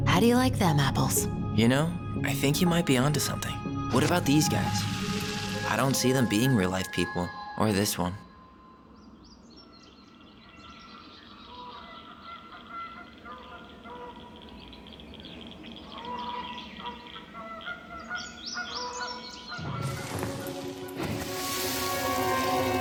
How do you like them apples? You know, I think you might be onto something. What about these guys? I don't see them being real-life people, or this one.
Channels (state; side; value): identical; both; correlation 1.00